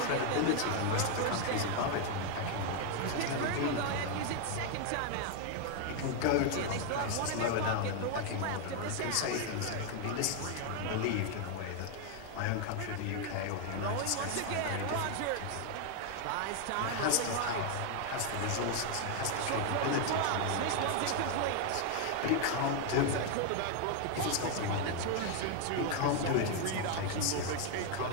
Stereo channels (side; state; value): both; different; correlation 0.00